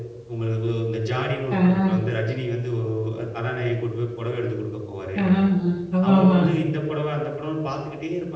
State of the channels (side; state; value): both; identical; correlation 1.00